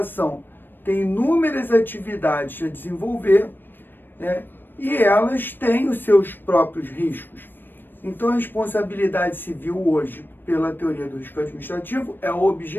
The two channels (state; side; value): late; right; 0.095 ms